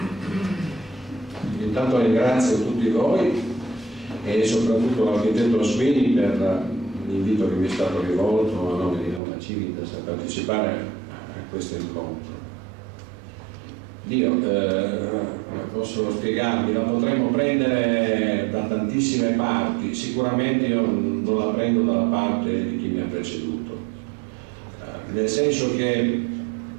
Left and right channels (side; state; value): left; drops out; at 9.2 s